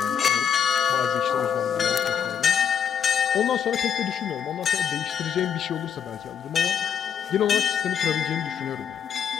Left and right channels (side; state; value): right; quieter; 8.0 dB